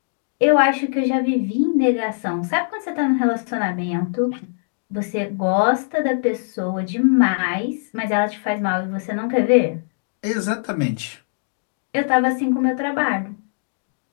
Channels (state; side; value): silent; right; digital silence